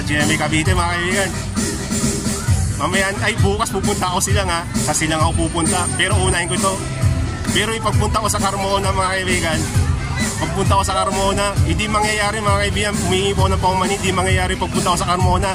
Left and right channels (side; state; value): both; identical; correlation 1.00